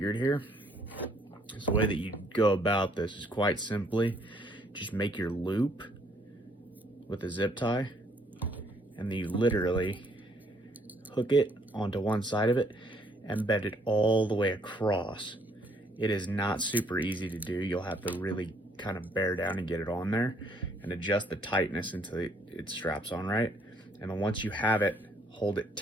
here. So the way that you go about this is quite simply just make your loop with a zip tie, and then you literally hook it onto one side of it and bend it all the way across. It is not super easy to do. You'll have to really kind of bear down and get it on there and adjust the tightness until it straps on right. And then once you have it, hold it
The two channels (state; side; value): normal; both; correlation 0.66